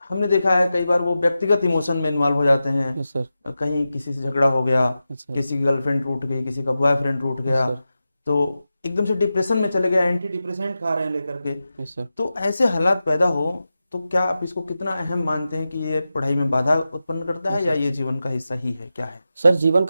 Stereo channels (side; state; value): both; inverted; correlation -0.92